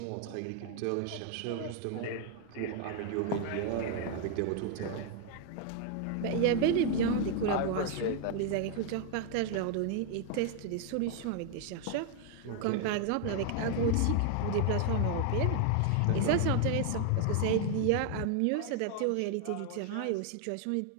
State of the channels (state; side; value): different; both; correlation 0.00